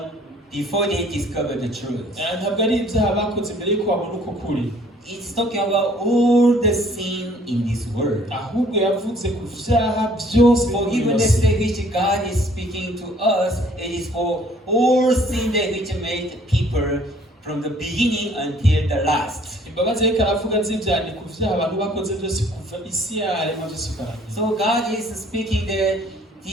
before they discover the truth. ntabwo ari ibyaha bakoze imbere y'uko babona uko kuri. it's talking about all the sin in this world. ahubwo yavuze ku vyaha byose Forgiveness that which God is speaking to us, it is for all sin that which made people from the beginning until the last. imbabazi reka aravuga z'ibyaha ni ku vyaha abantu bakoze byose kuva isi yaremwa byose ukarangira. So God is speaking that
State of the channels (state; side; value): normal; both; correlation 0.58